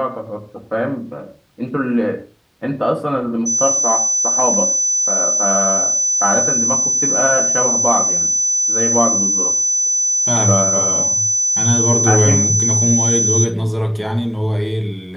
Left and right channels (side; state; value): both; identical; correlation 1.00